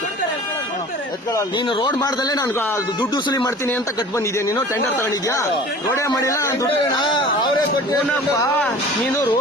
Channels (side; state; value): both; normal; correlation 0.43